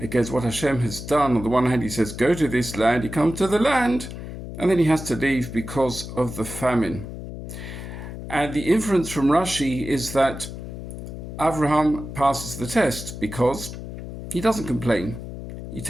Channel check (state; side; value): noise; left; hum, 9 dB below the sound